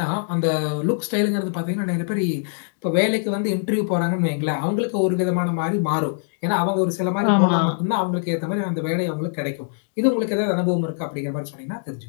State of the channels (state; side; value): silent; right; digital silence